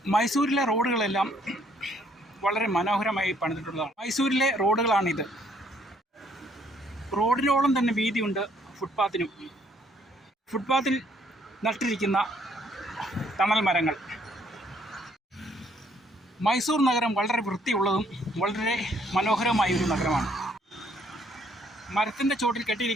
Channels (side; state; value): both; normal; correlation 0.66